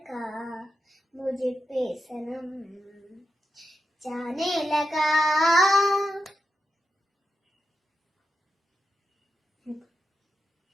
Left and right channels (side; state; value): both; normal; correlation 0.88